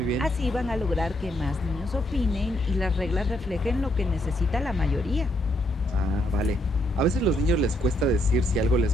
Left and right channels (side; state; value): both; normal; correlation 0.75